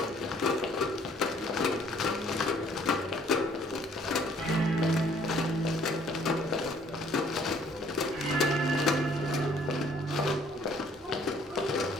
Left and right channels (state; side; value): normal; both; correlation 0.60